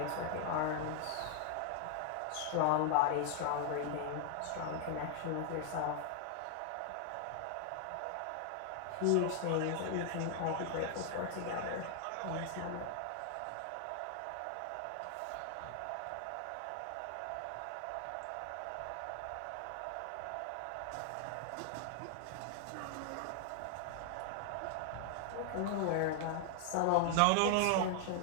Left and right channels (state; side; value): different; both; correlation 0.00